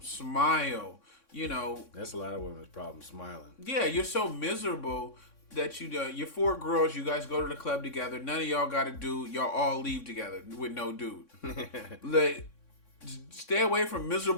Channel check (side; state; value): right; late; 3.6 ms